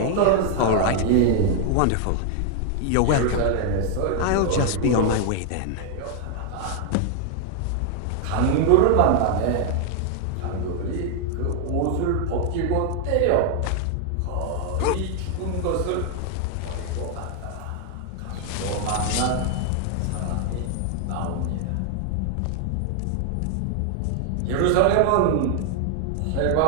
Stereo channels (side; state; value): both; different; correlation 0.00